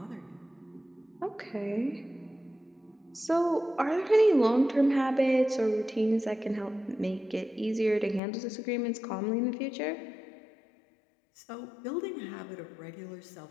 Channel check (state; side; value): drops out; right; at 8.2 s